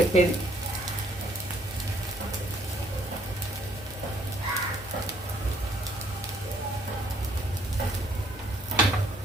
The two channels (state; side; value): normal; both; correlation 0.64